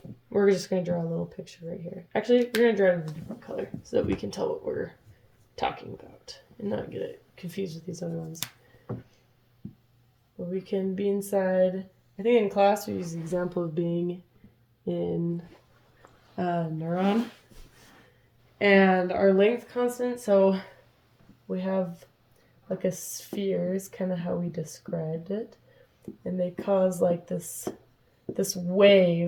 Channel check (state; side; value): identical; both; correlation 1.00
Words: we're just going to draw a little picture right here. Actually, we're going to draw it in a different color so that we can tell what we're talking about and not get it confused with these other ones. But we can be inside, I think in class we use the example of being in a neuron. And our length constant, so we have like a sphere is kind of how we described it. And they cause like this